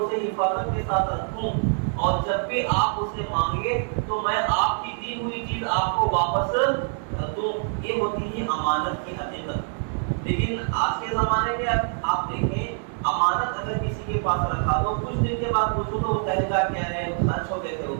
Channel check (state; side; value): silent; left; 55 dB below the other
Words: حفاظت کے ساتھ رکھوں اور جب بھی آپ اسے مانگے تو میں آپ کی دی ہوئی چیز آپ کو واپس کر دوں. یہ ہوتی ہے امانت کی حقیقت. لیکن آج کے زمانے میں آپ دیکھیں امانت اگر کسی کے پاس رکھا تو کچھ دن کے بعد پوچھو تو وہ کہے گا کیا رہے سچ ہو گئے تھے وہ